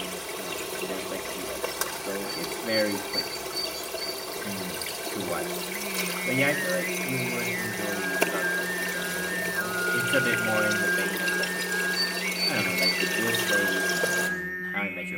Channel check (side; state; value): both; identical; correlation 1.00